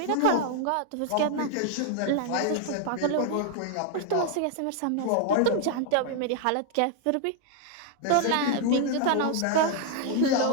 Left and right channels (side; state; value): both; different; correlation 0.00